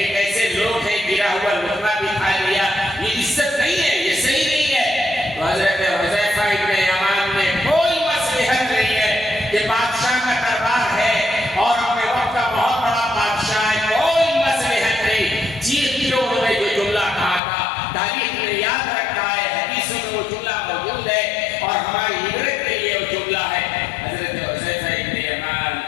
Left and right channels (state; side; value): drops out; right; at 17.4 s